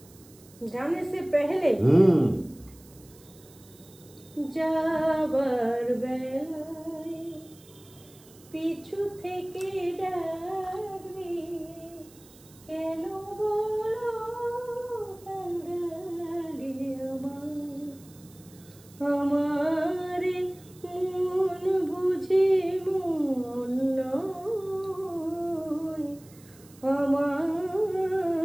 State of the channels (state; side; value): noise; right; hiss, 24 dB below the sound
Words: জানে সে পহলে যাবার বেলায় পিছু থেকে ডাকবে, কেন বলো আমার মন বুঝে মন নয়,